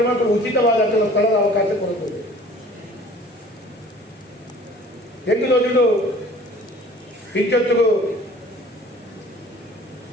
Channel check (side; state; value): both; normal; correlation 0.49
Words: ಉಚಿತವಾದ ಸ್ಥಳದ ಅವಕಾಶ ಕೊಡುತ್ತದೆ. ಹೆಂಗು ನೋಡಿದ್ದು ಇಂಚೊತ್ತಿಗೂ